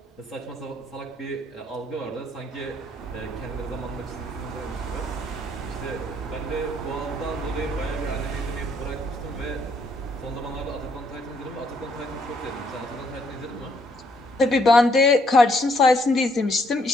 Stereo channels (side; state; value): both; normal; correlation 0.69